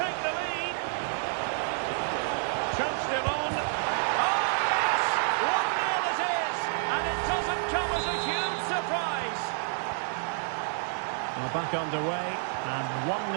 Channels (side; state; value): left; silent; 58 dB below the other